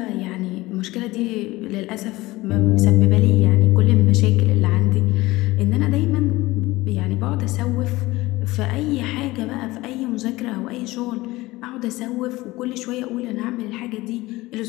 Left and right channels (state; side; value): quieter; right; 19.5 dB